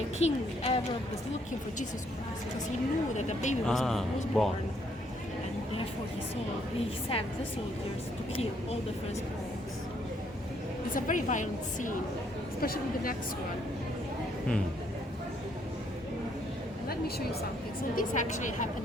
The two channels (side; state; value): both; normal; correlation 0.70